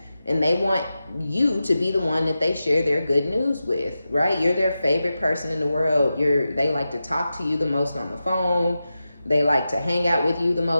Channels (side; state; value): both; inverted; correlation -0.92